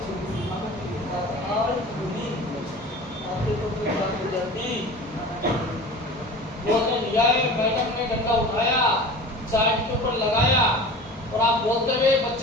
लिया है, मैडम ने डंडा उठाया, साइड के ऊपर लगाया और आप बोलते हुए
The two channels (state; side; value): normal; both; correlation 0.37